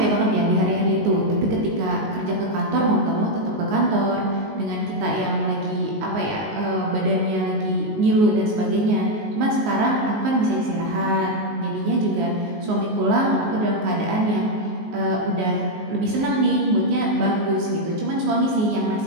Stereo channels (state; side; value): late; left; 19 ms